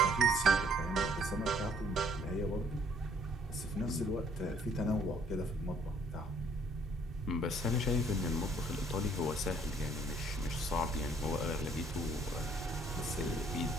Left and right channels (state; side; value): normal; both; correlation 0.62